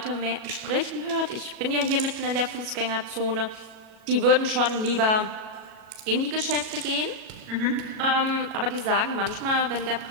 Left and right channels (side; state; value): left; late; 37 ms